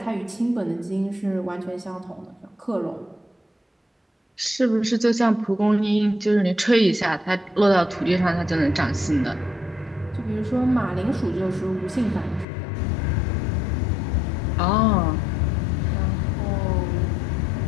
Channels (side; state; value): right; drops out; at 12.5 s